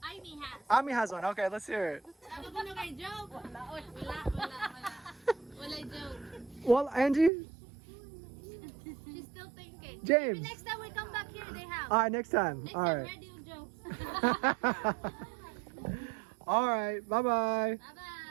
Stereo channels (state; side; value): drops out; left; at 7.3 s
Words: Amy has. Ami has one. Okay, let's hear it. Ano ba na kay joke? Wala. Wala joke. Well, Angie, She's still thinking. James. Maybe next time we come back here, they have. All right, next time. Next All time, right. ready yung jokes. All right. Bye-bye.